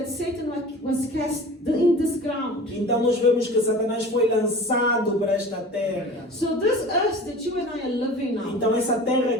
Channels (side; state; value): both; normal; correlation 0.39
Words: Satan was cast in this ground. Então nós vemos que Satanás foi lançado para esta terra. So this earth that you and I are living now, Então essa terra